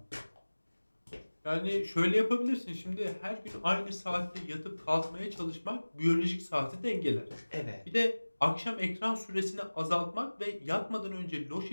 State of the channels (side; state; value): both; inverted; correlation -1.00